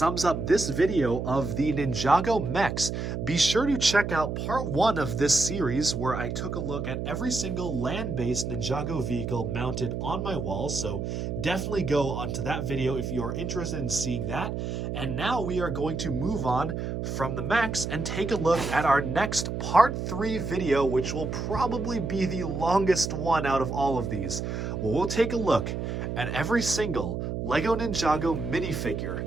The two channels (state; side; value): noise; right; hum, 3 dB below the sound